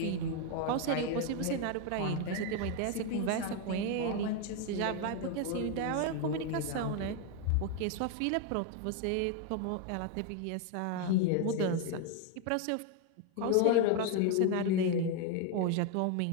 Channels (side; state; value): both; different; correlation 0.01